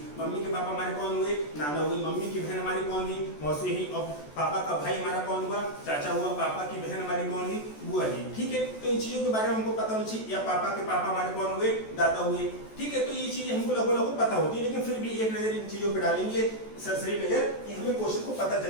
मम्मी के पापा हमारे कौन हुए, नाना हुई, मम्मी की बहन हमारी कौन हुई, मौसी हुई, और पापा का भाई हमारा कौन हुआ, चाचा हुआ, पापा की बहन हमारी कौन हुई, बुआ हुई। ठीक है, तो इन चीजों के बारे में हमको पता होना चाहिए। या पापा के पापा हमारे कौन हुए, दादा हुए। ठीक है, तो ये चीजें हमको लगभग पता होती है, लेकिन फिर भी एक नजर इन चीजों पे डालेंगे, सरसरी नजर, कि हमें क्वेश्चन को पता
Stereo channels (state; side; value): late; right; 14 ms